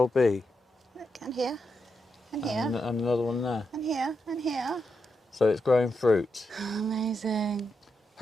be? Look, and here, and here, And another one there. and here, and here. So it's growing fruit. Amazing.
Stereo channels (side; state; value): both; normal; correlation 0.84